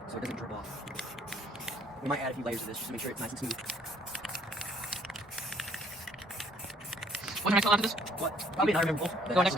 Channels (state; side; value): normal; both; correlation 0.62